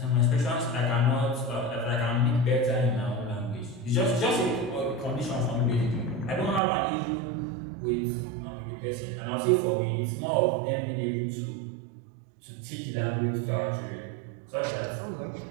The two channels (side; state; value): left; drops out; at 6.6 s